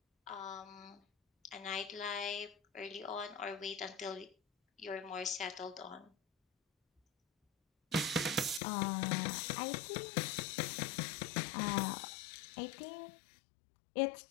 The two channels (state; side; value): drops out; right; at 8.6 s